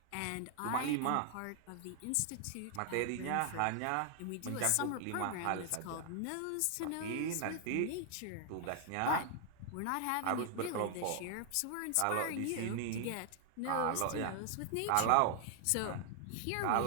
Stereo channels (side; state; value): both; different; correlation 0.00